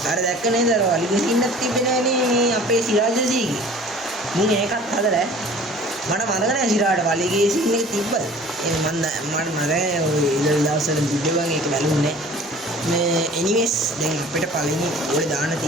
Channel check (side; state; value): both; normal; correlation 0.46